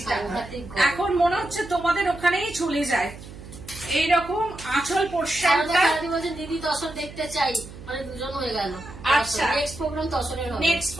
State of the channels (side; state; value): right; noise; hum, 15 dB below the sound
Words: এখন মনে হচ্ছে তোমাদের ওখানেই চলে যায়। এইরকম আঁচল পোর্শনটা। দিদি তসর দেখতে চাই, মানে দুজন হয়ে গেল। আচ্ছা। নেক্সট প্রোগ্রাম তসরের হবে। নেক্সট